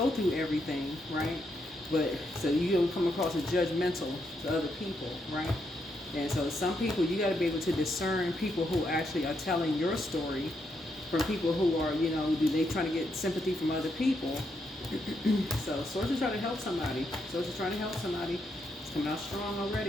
through everything, right? But so you don't come across as judgmental to other people, right? And so some people, you got to be able to discern people who actually are telling your story from people who are, they trying to get sympathy from other people. So Source is trying to help somebody. Source is trying to help somebody. It's coming out strong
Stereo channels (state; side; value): normal; both; correlation 0.79